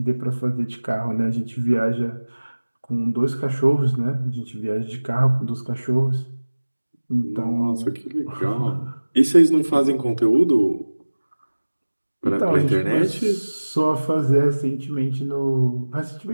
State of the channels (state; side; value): inverted; both; correlation -1.00